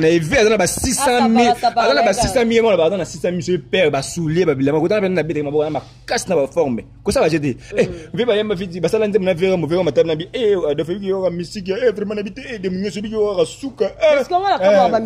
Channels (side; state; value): both; identical; correlation 1.00